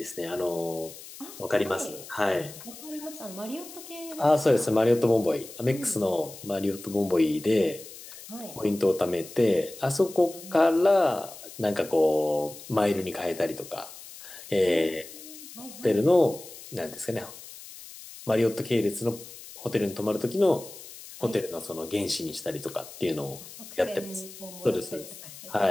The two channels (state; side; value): noise; left; hiss, 15 dB below the sound